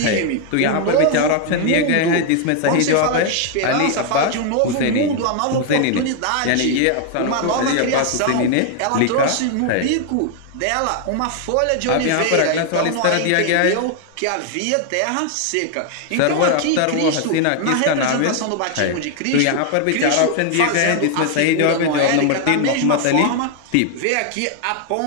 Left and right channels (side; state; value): both; different; correlation 0.00